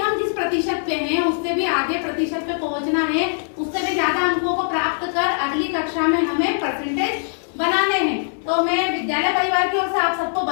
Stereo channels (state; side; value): silent; right; 65 dB below the other